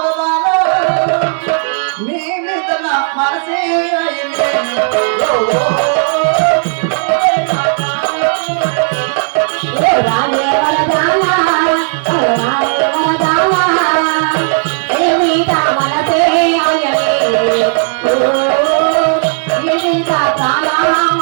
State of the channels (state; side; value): silent; left; digital silence